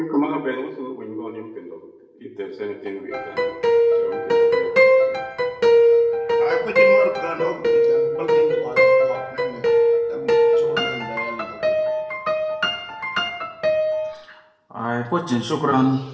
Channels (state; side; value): identical; both; correlation 1.00